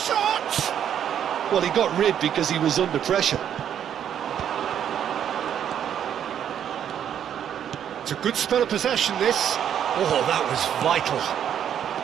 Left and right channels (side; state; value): left; quieter; 9.4 dB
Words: Well, he got rid because he was under pressure. It's a good spell of possession, this. Oh, that was vital.